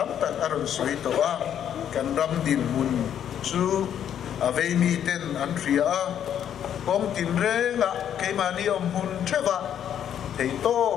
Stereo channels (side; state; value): right; quieter; 9.6 dB